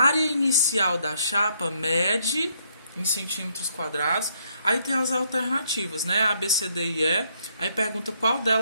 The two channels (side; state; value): both; inverted; correlation -0.71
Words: inicial da chapa mede em centímetros quadrados. Aí tem as alternativas, né? A, B, C, D e E. Aí pergunta qual